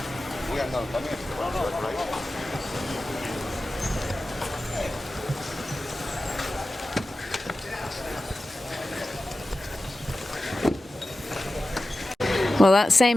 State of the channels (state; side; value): normal; both; correlation 0.94